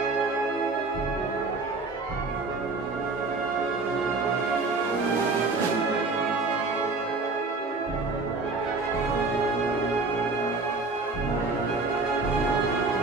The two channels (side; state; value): left; quieter; 3.7 dB